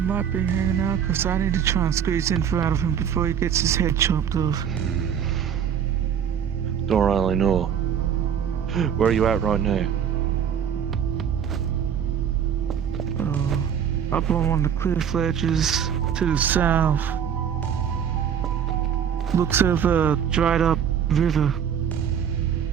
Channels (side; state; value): left; quieter; 8.3 dB